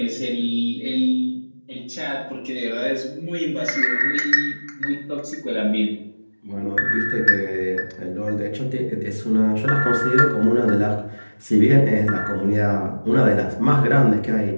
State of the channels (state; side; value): inverted; both; correlation -1.00